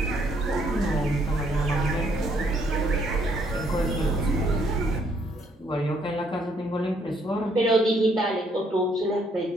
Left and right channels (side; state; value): both; normal; correlation 0.68